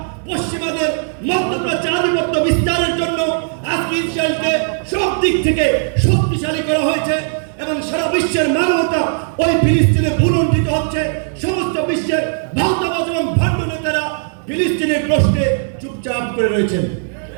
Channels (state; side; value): silent; left; digital silence